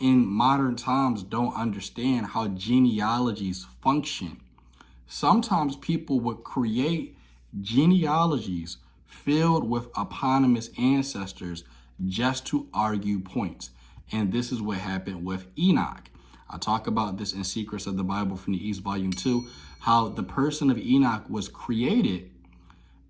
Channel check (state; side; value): identical; both; correlation 1.00